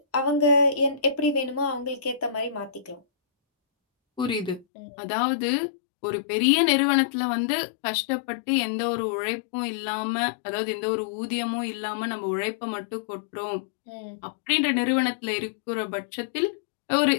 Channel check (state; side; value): drops out; right; at 4.7 s